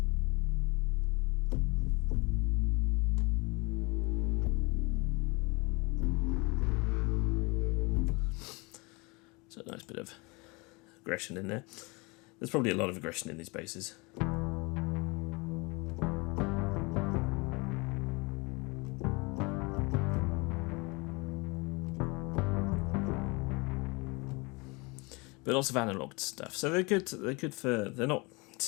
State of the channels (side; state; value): right; quieter; 27.3 dB